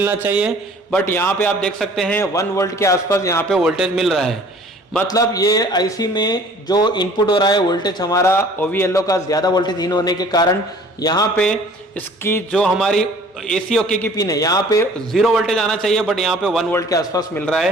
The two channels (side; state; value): both; normal; correlation 0.51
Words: चाहिए, बट यहाँ पे आप देख सकते हैं 1 वोल्ट के आसपास यहाँ पे वोल्टेज मिल रहा है। मतलब ये IC में जो इनपुट हो रहा है वोल्टेज हमारा OVLO का ज्यादा वोल्टेज इन होने के कारण यहाँ पे इसकी जो हमारी AC ओके की पिन है यहाँ पे 0 वोल्टेज आना चाहिए, बट यहाँ पे 1 वोल्ट के आसपास मिल रहा